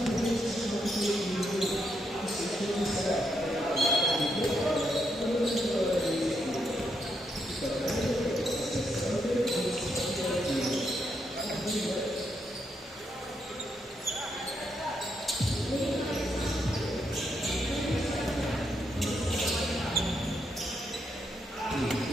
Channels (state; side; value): normal; both; correlation 0.79